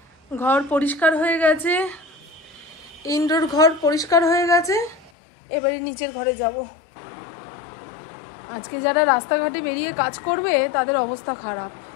ঘর পরিষ্কার হয়ে গেছে, ইনডোর ঘর পরিষ্কার হয়ে গেছে, এবারে নিচের ঘরে যাব। আজকে যারা রাস্তাঘাটে বেরিয়ে কাজ করবে তাদের অবস্থা খারাপ।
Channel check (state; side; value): drops out; right; at 5.1 s